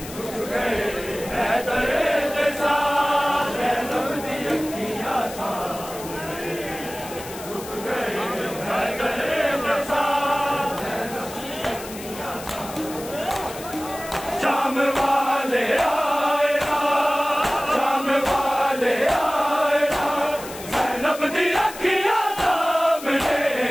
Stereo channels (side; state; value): left; noise; hiss, 14 dB below the sound